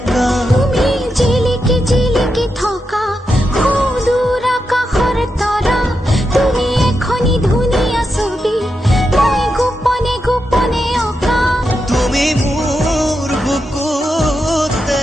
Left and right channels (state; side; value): normal; both; correlation 0.86